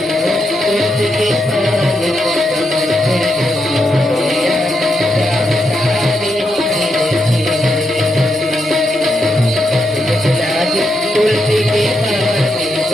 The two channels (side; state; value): both; normal; correlation 0.83